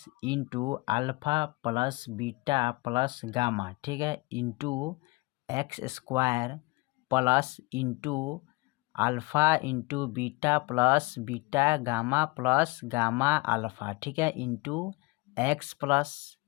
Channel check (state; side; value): quieter; right; 24.2 dB